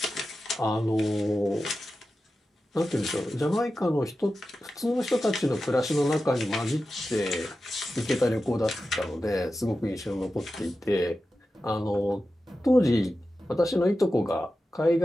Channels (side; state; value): both; normal; correlation 0.93